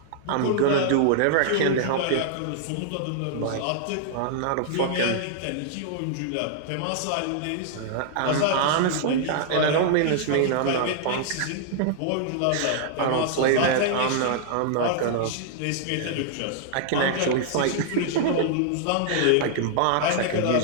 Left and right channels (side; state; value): both; different; correlation -0.01